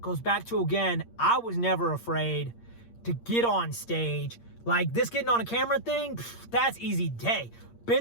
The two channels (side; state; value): right; late; 8.6 ms